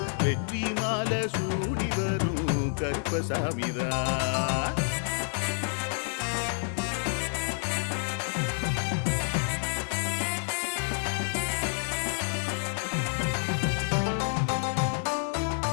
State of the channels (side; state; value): right; silent; digital silence